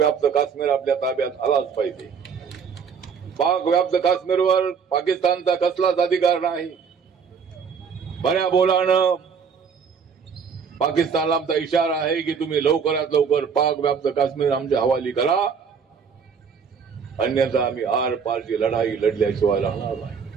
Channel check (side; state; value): left; quieter; 6.3 dB